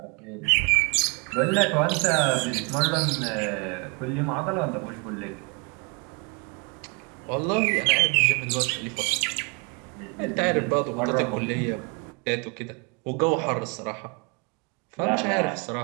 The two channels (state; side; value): quieter; left; 33.0 dB